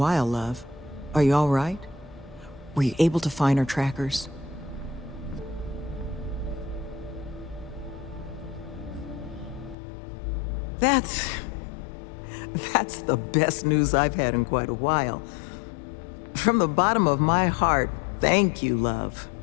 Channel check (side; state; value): right; drops out; at 9.8 s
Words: love. Are you all right? Were you able to find our trackers? That's the best news I've had in quite a while. From the bottom of my heart, thank you, love.